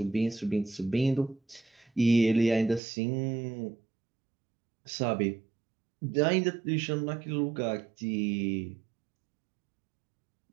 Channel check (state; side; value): drops out; left; at 2.8 s